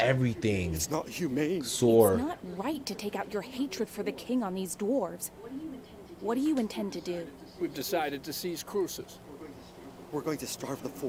It's not humane. sore. It's not right to take out your hatred for the king on these dwarves. What do you intend to do? We've decided to seize Crucis. We're going to starve the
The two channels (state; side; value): identical; both; correlation 1.00